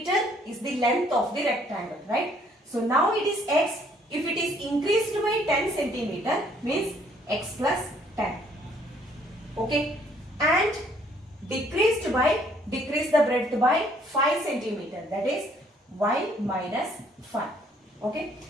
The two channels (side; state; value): both; normal; correlation 0.63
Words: is the length of the rectangle, right? So now it is x. If it is increased by 10 centimeter, means x plus 10. Okay. And decrease the breadth by 5 centimeter. That is y minus 5. Okay.